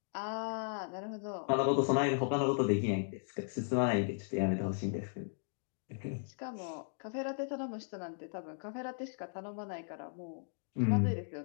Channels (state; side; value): silent; right; digital silence